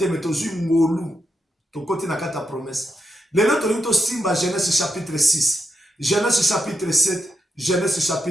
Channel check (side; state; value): both; normal; correlation 0.84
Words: mais tozui ngolu. To koti na kata promesse. Lelo to linto simba Genèse chapitre 6. Genèse chapitre 7. Genèse